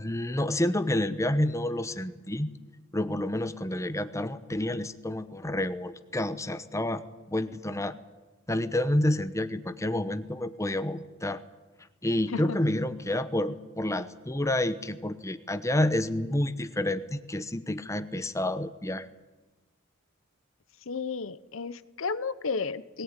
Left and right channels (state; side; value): normal; both; correlation 0.73